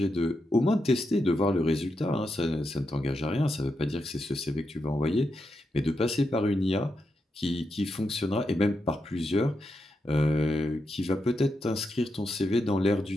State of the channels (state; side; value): normal; both; correlation 0.85